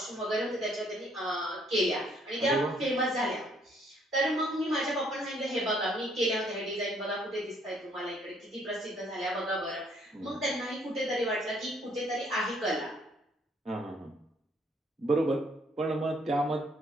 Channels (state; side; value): normal; both; correlation 0.65